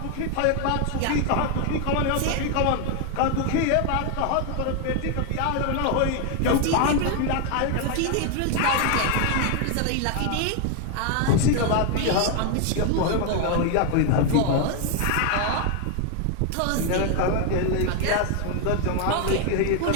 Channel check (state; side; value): different; both; correlation 0.01